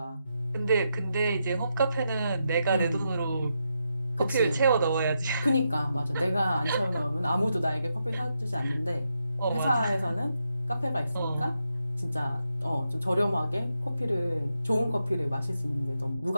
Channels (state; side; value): inverted; both; correlation -0.84